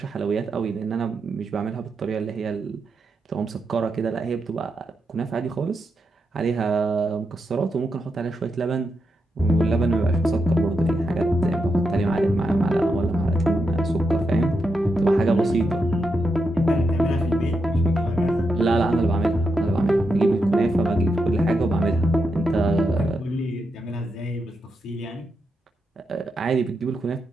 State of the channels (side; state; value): both; normal; correlation 0.84